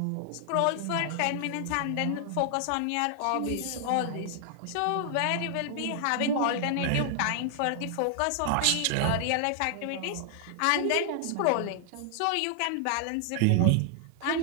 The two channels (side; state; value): both; different; correlation 0.00